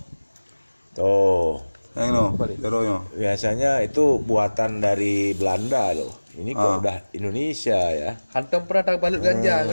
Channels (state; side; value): inverted; both; correlation -1.00